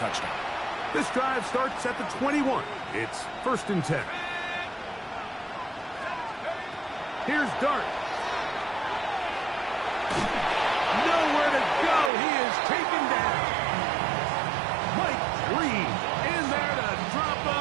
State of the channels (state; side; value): drops out; left; at 12.1 s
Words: touchdown. This drive starts at the 21. It's 1st and 10. Here's Dart. Nowhere to go. He is taken down. Mike Reed in there to drop